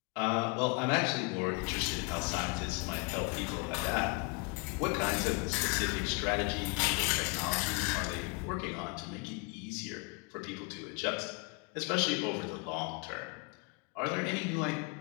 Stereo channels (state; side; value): quieter; right; 29.7 dB